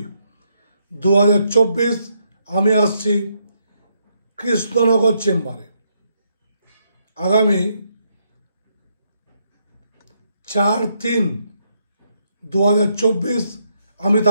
আমি আসছি কৃষ্ণনগর চেম্বারে। আগামী 4/3/2024 আমি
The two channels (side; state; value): both; inverted; correlation -0.76